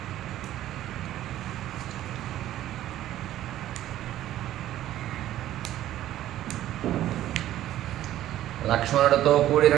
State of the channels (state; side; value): quieter; left; 13.3 dB